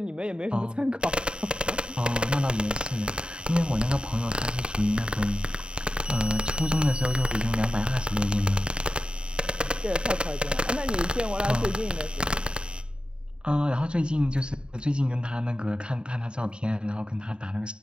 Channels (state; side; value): late; left; 0.051 ms